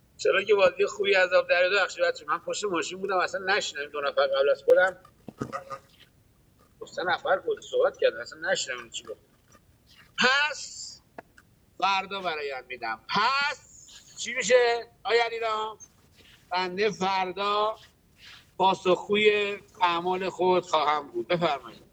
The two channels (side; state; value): both; identical; correlation 1.00